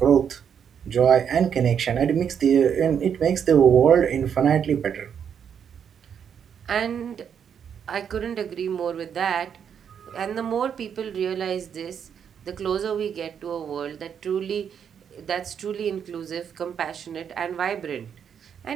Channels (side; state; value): left; quieter; 7.9 dB